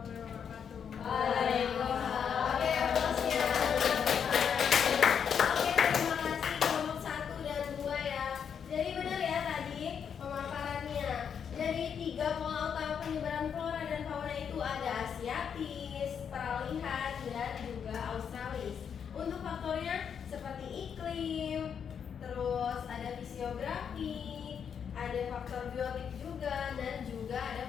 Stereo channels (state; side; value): quieter; right; 7.5 dB